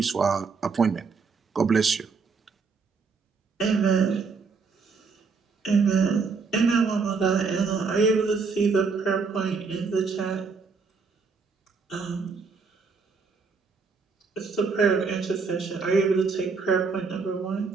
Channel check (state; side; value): quieter; left; 4.9 dB